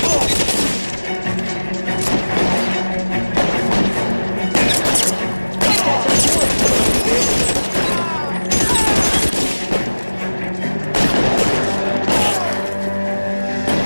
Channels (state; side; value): inverted; both; correlation -1.00